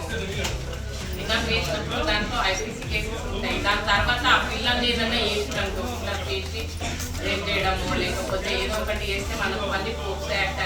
కిడ్నాప్ చేసినప్పుడు దాంట్లో IPC కేసెస్ ఉంటాయి. దాని తర్వాత ఆ పిల్లల్ని ఏదైనా చేసినట్టు కిడ్నాప్ చేసి రేప్ చేయడము, లేకపోతే ఏదో ఒకటి చేస్తే మనకు మళ్ళీ పోక్సో యాక్ట్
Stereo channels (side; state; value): both; identical; correlation 1.00